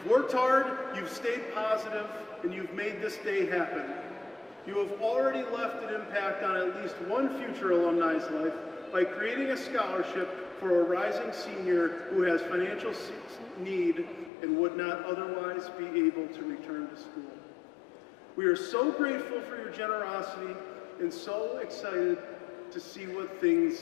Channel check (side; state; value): right; drops out; at 14.3 s